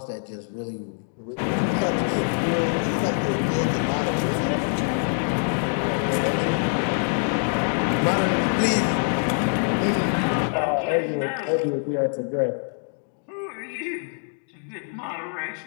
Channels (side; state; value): right; silent; 62 dB below the other